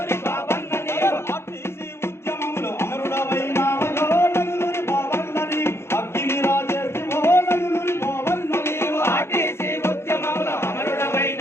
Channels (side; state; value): right; late; 0.12 ms